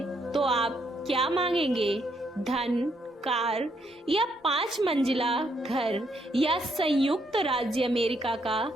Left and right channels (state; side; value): normal; both; correlation 0.74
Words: तो आप क्या मांगेंगे? धन, कार या 5 मंजिला घर या संयुक्त राज्य अमेरिका का